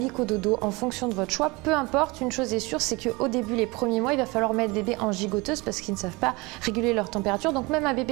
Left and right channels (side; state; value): left; quieter; 24.6 dB